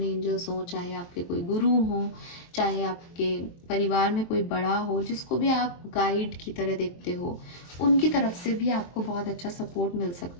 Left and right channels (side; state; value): right; late; 23 ms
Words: एंजल्स हो, चाहे आपके कोई गुरु हो, चाहे आपके परिवार में कोई बड़ा हो, जिसको भी आप गाइड की तरह देखते हो, उनकी तरफ से भी आपको बहुत अच्छा सपोर्ट मिल